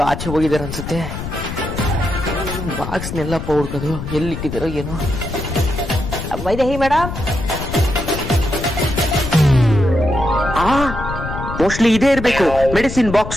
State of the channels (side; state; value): left; noise; rumble, 7 dB below the sound